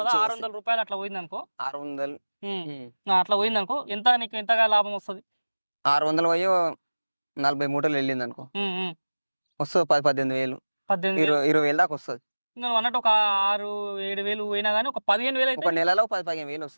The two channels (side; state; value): both; inverted; correlation -1.00